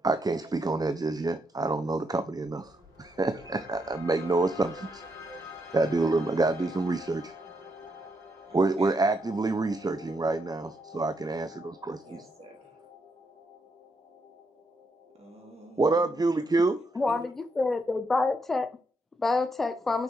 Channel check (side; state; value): both; normal; correlation 0.79